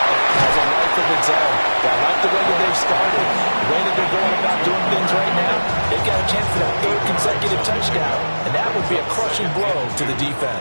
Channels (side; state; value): both; inverted; correlation -1.00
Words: has a life of its own. I like the way that they've started, the way that they're going about doing things right now. They've got a chance for that 3rd consecutive touchdown, and that would be a crushing blow to the